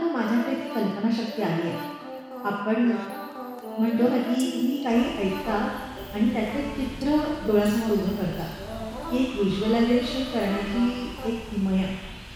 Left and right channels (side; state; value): both; identical; correlation 1.00